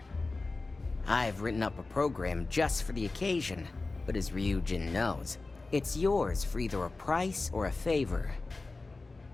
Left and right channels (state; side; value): quieter; right; 3.5 dB